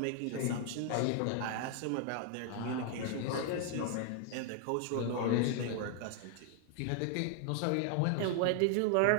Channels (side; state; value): both; different; correlation 0.00